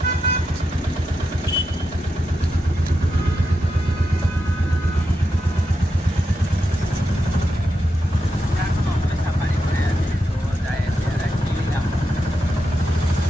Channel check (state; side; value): normal; both; correlation 0.86